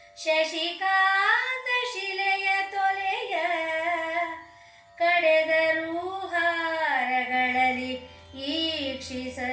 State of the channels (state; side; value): identical; both; correlation 1.00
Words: ಶಶಿಕಾಂತ ಶಿಲೆಯ ತೊಲೆಯ ಕಡೆದರು ಹಾರಗಳಲ್ಲಿ